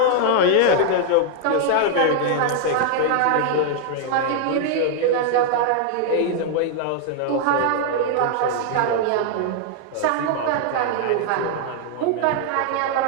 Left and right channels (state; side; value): different; both; correlation 0.00